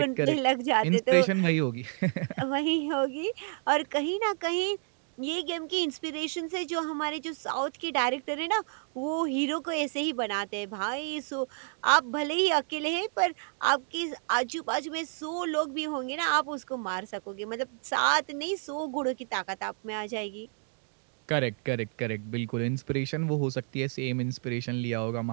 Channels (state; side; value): silent; left; 58 dB below the other